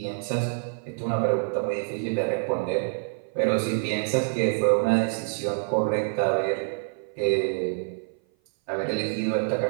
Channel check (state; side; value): silent; left; 56 dB below the other